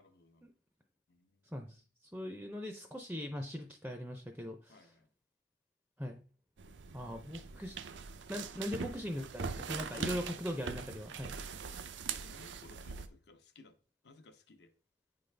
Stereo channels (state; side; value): normal; both; correlation 0.65